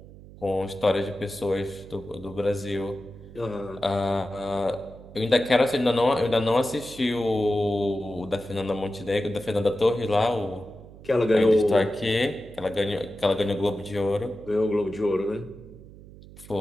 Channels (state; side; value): noise; right; hum, 19 dB below the sound